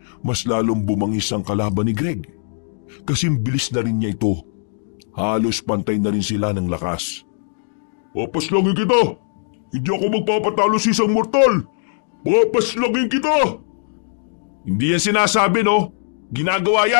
mas lalong bumangis ang kalaban ni Greg. Kasing bilis na rin niya ito. Halos pantay na rin sila ng lakas. Papaslangin kita! Hindi ako magpapatalo sa isang mortal! Papaslangin kita! Hindi yan sinasabi no? Ginagawa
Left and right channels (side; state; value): right; silent; digital silence